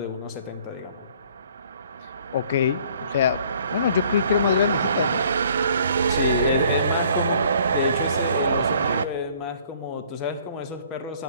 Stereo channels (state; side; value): inverted; both; correlation -0.58